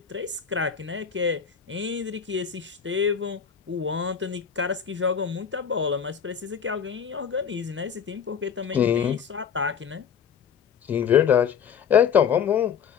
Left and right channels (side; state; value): right; quieter; 7.4 dB